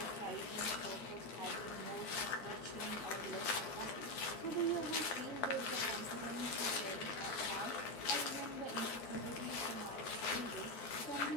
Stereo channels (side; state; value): right; late; 11 ms